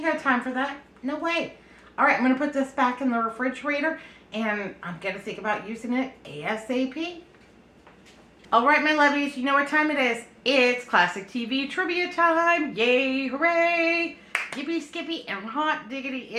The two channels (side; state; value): both; identical; correlation 1.00